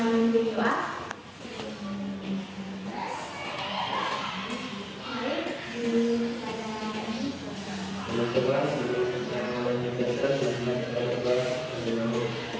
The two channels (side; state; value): both; identical; correlation 1.00